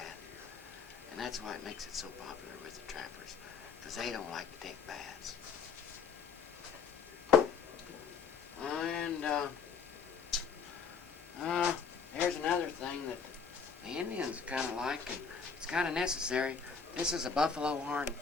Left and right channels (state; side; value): quieter; right; 5.9 dB